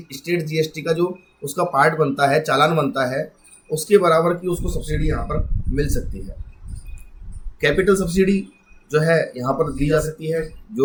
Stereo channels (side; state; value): both; identical; correlation 1.00